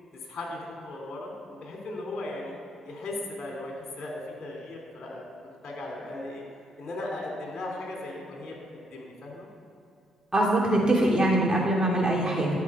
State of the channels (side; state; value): both; normal; correlation 0.72